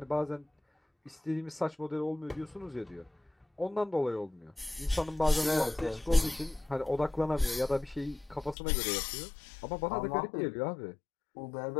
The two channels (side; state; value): right; drops out; at 8.6 s